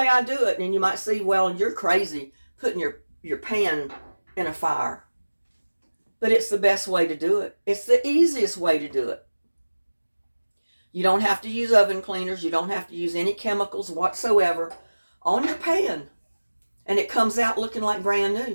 I do it. And you might say, well, you're crazy putting your pan in a fire. But it's the best way to do it. It's the easiest way to do it. You don't have to use oven cleaners. You don't have to use any chemicals whatsoever on your pan. And it comes out looking like brand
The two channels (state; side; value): inverted; both; correlation -1.00